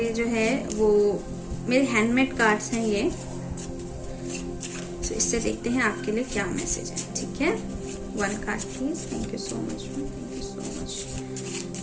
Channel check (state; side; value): identical; both; correlation 1.00